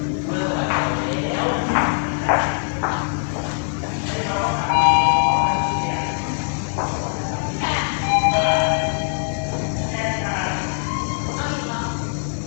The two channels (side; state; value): right; silent; 64 dB below the other